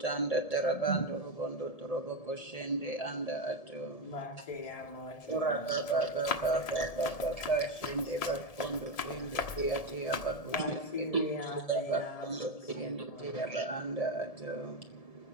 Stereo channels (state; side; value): late; right; 1.7 ms